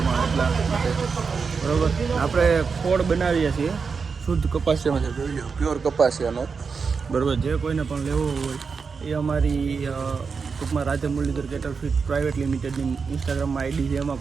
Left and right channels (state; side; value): quieter; left; 5.3 dB